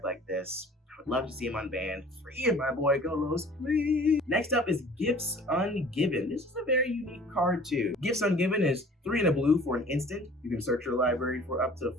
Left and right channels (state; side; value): normal; both; correlation 0.48